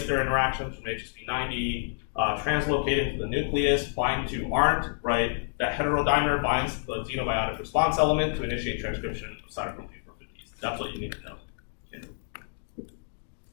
their interactions from HSP90, translocate into the nucleus, bind to ARNT, right? That heterodimer binds to the xenobiotic response element to initiate transcription of cytochrome P450s. That's what you need to know. Okay.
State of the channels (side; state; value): right; silent; digital silence